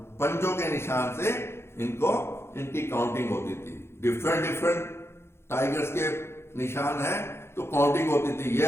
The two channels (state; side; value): late; right; 0.12 ms